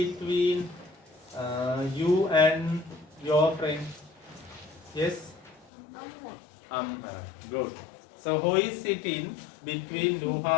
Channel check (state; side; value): drops out; right; at 5.7 s